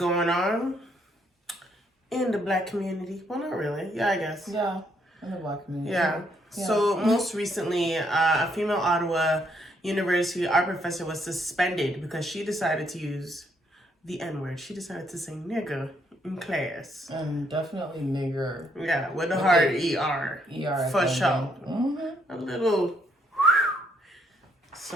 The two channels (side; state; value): both; normal; correlation 0.72